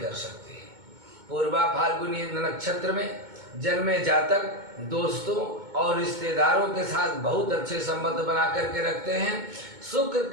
सकते। पूर्वा फाल्गुनी नक्षत्र में जन्मे जातक दोस्तों और रिश्तेदारों के साथ बहुत अच्छे संबंध बना करके रखते हैं। शुक्र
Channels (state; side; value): late; left; 2.2 ms